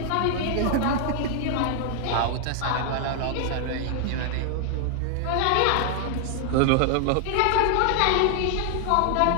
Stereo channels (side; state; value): both; different; correlation 0.00